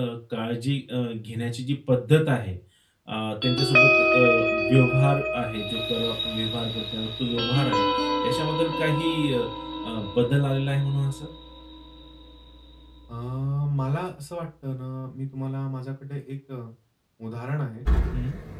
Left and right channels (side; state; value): both; identical; correlation 1.00